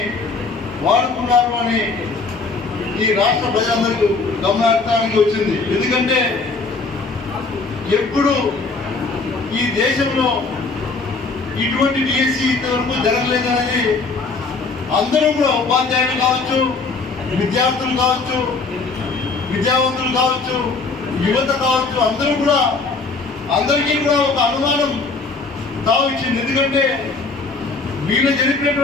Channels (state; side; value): quieter; right; 4.1 dB